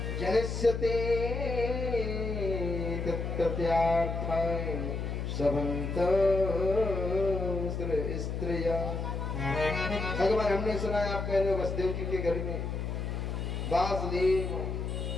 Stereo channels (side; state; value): left; noise; hum, 3 dB below the sound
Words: जनस्यते तत्त्यार्थाय सबंत स्त्रिया। भगवान हमने सुना है आप कह रहे हो वसुदेव जी के घर में वासुदेव